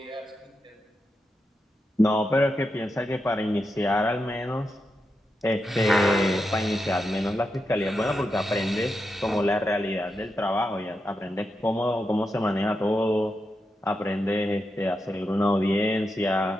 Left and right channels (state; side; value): normal; both; correlation 0.86